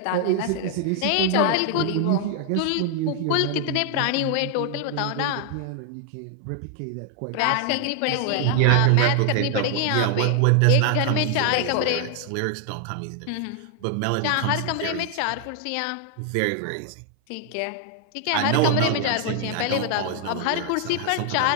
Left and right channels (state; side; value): different; both; correlation 0.00